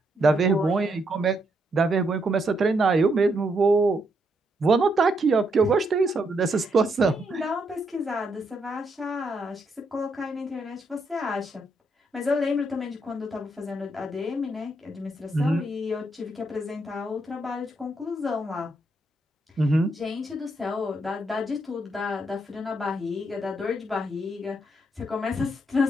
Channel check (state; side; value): normal; both; correlation 0.77